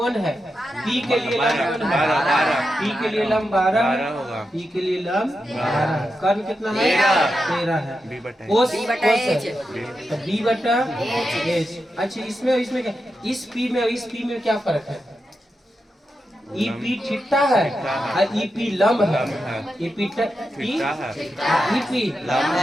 है? पी के लिए लंब कौन है? 12। पी के लिए लंब 12 होगा। पी के लिए लंब 12। कर्ण कितना है? 13 है। बी बटा कोस बी बटा एच। तो बी बटा एच। अच्छा, इसमें क्या? इस पी में और इस पी में क्या फर्क है? ई पी थीटा है और ई पी लंब है। ई पी थीटा है। ई पी लंब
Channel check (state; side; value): normal; both; correlation 0.88